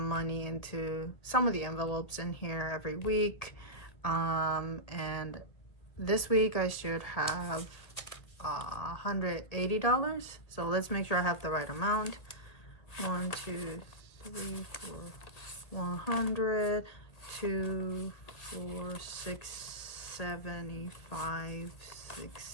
money into some of the envelopes in here every week. And this week I should have $180. So let's make sure I have the right amount. 1, 2, 3, 4, 100, 2, 4, 6, 75, 6,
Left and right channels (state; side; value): late; right; 1.8 ms